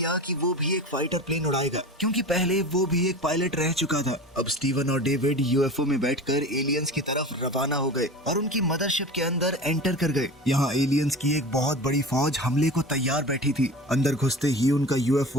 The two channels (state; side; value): normal; both; correlation 0.34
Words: कि वो भी एक फाइटर प्लेन उड़ाएगा, क्योंकि पहले वो भी एक पायलट रह चुका था। अब स्टीवन और डेविड यूएफओ में बैठकर एलियंस की तरफ रवाना हो गए और उनकी मदरशिप के अंदर एंटर कर गए। यहाँ एलियंस की एक बहुत बड़ी फौज हमले को तैयार बैठी थी। अंदर घुसते ही उनका